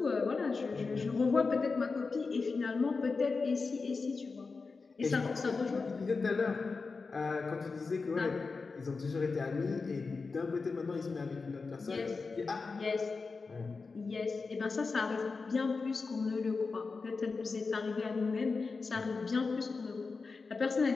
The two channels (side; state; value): right; quieter; 4.4 dB